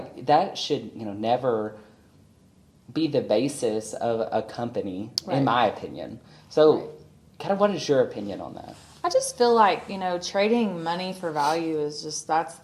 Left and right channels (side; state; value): both; identical; correlation 1.00